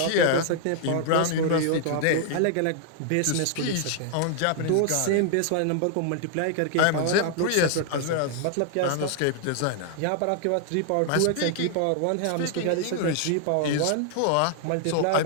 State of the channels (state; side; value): different; both; correlation 0.00